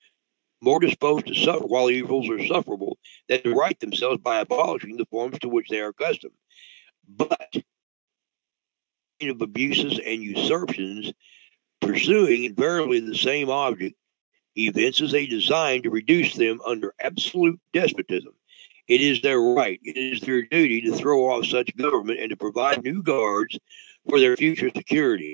more disposed to suffer while evils are sufferable than to right themselves by abolishing the forms to which they are accustomed. But of abuses and usurpations, pursuing invariably the same object, evinces a design to reduce them under absolute despotism. It is their right, it is their duty to throw off such government and to provide new guards for their future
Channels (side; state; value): left; silent; digital silence